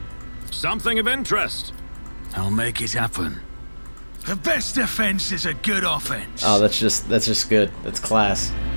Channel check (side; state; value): both; inverted; correlation -1.00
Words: Something of interest. I'll make it happen. The best defense is a good offense. Oh, that's just good. That's class.